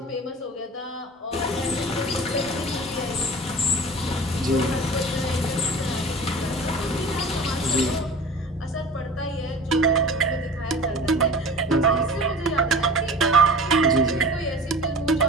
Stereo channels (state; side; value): normal; both; correlation 0.39